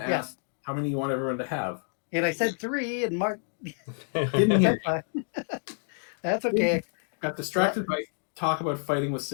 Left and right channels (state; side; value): silent; right; 59 dB below the other